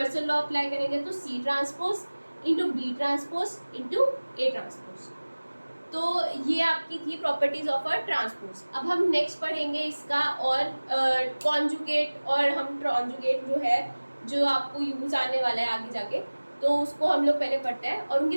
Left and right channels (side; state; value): both; inverted; correlation -1.00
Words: लॉ अप्लाई करेंगे, तो c transpose into b transpose into a transpose. तो ये आपकी थी प्रॉपर्टीज ऑफ अ ट्रांसपोज। अब हम नेक्स्ट पढ़ेंगे इसका और कॉन्जुगेट, और हम कॉन्जुगेट जो है जो आपको यूज आने वाला है आगे जाके, तो उसको हम लोग पहले पढ़ते हैं और